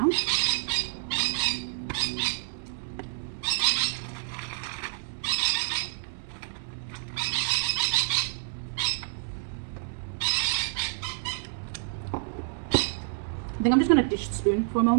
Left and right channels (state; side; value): silent; left; digital silence